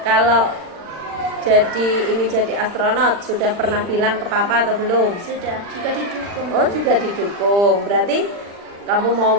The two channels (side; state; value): left; late; 40 ms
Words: ingin jadi astronot sudah pernah bilang ke papa atau belum? Sudah, juga didukung. Oh, juga didukung. Berarti kamu mau